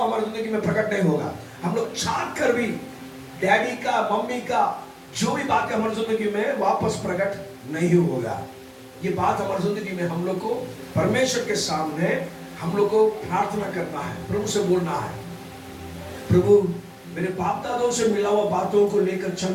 हमारी जिंदगी में प्रकट नहीं होगा। हम लोग चाह कर भी डैडी का, मम्मी का जो भी बातें हमारी जिंदगी में वापस प्रकट नहीं होगा। ये बात हमारी जिंदगी में हम लोग को परमेश्वर के सामने हम लोग को प्रार्थना करना है, प्रभु से बोलना है, प्रभु मेरे बाप दादों से मिला हुआ बातों को लेकर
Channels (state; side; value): identical; both; correlation 1.00